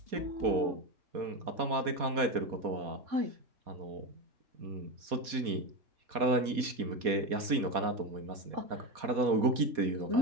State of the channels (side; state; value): left; late; 4.2 ms